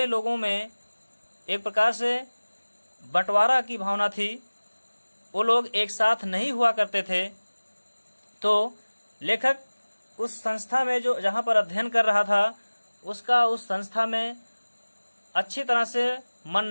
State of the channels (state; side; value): inverted; both; correlation -1.00